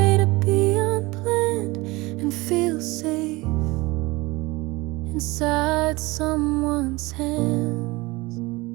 to be unplanned, and feel safe inside someone's hands.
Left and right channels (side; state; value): left; quieter; 22.4 dB